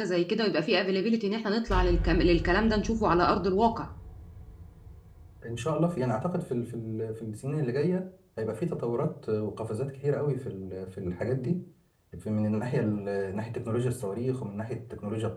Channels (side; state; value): both; identical; correlation 1.00